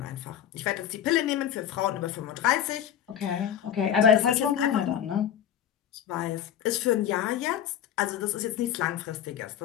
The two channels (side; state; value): right; quieter; 10.0 dB